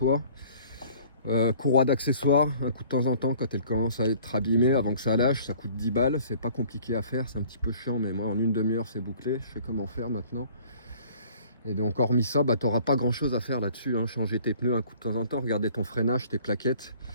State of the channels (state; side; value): inverted; both; correlation -0.52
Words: Courroie d'accessoires, un coup de temps en temps quand elle commence à être abîmée avant que ça lâche, ça coûte 10 balles, c'est pas compliqué à faire, c'est un petit peu chiant mais moi en une demi-heure c'est bouclé, je sais comment faire maintenant. Et donc hormis ça, t'auras pas grand chose à faire là-dessus, hein. Changer tes pneus un coup de temps en temps, regarder ton freinage, tes plaquettes.